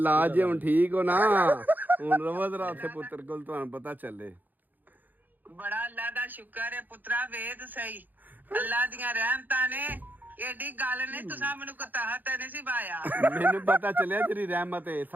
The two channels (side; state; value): left; late; 0.085 ms